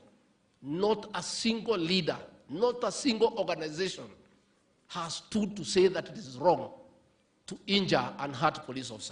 Not a single leader, not a single organization has stood to say that it is wrong to injure and hurt police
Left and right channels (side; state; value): both; identical; correlation 1.00